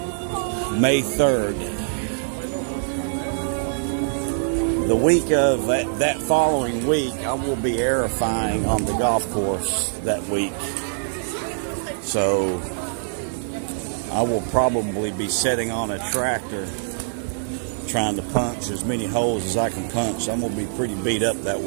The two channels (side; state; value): left; silent; 63 dB below the other